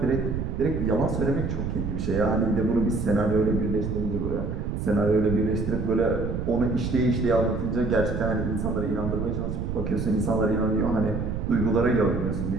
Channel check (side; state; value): right; noise; rumble, 3 dB below the sound